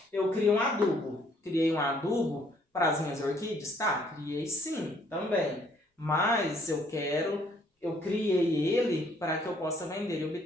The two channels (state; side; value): normal; both; correlation 0.64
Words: eu crio um adubo. Criei um adubo para as minhas orquídeas? Tá, criei sim, também. Mas eu criei ele para que eu possa vender e